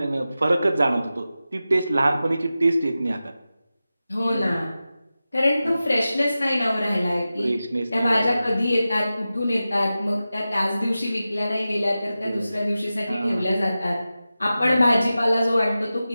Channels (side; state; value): both; inverted; correlation -0.94